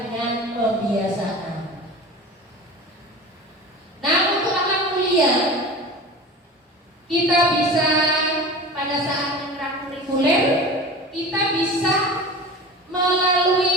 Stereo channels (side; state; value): both; normal; correlation 0.35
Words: pembiasaan. Nah, untuk akhlak mulia kita bisa pada saat ekstrakurikuler kita bisa